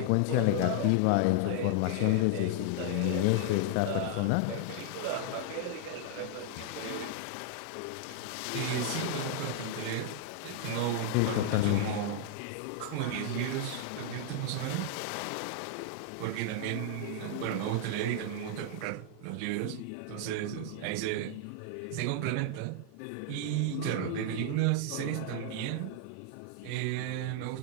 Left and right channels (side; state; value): both; different; correlation -0.01